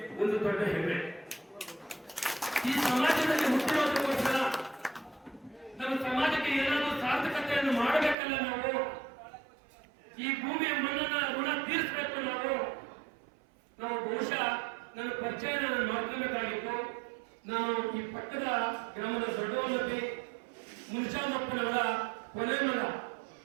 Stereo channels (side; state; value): left; drops out; at 8.2 s